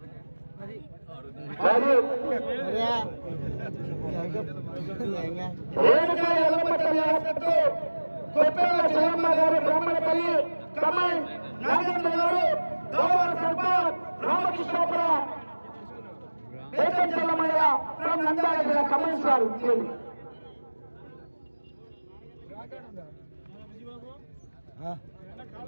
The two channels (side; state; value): both; inverted; correlation -1.00